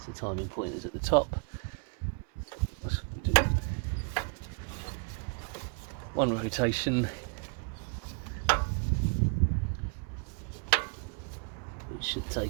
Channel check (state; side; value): quieter; left; 37.1 dB